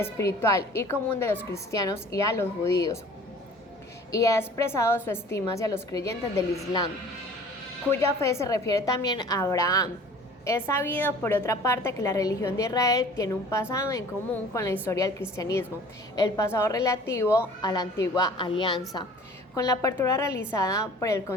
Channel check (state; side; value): normal; both; correlation 0.47